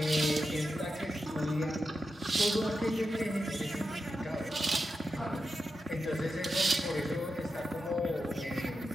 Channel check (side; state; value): both; normal; correlation 0.89